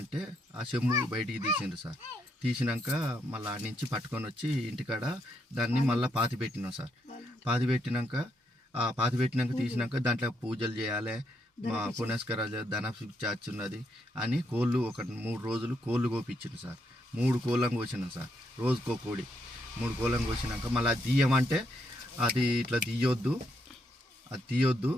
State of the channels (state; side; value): normal; both; correlation 0.77